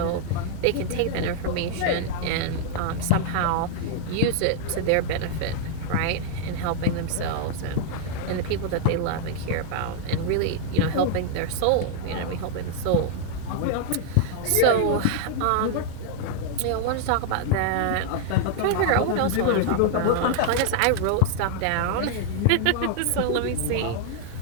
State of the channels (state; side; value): different; both; correlation -0.01